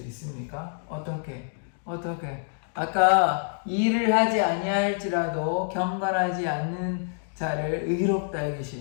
어떻게? 아까 일을 하지 아니할지라도 경건하지 않는 자를 의롭다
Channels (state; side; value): silent; right; digital silence